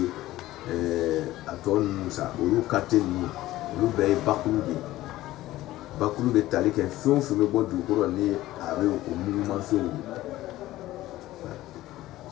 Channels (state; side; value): quieter; right; 16.0 dB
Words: aton sa ulu kateni ulu be bakulu be talike fun me bo du ko ni abe ko mugu man funa